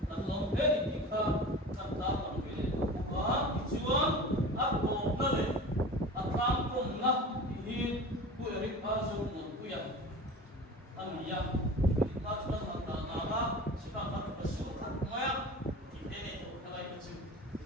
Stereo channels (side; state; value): both; normal; correlation 0.35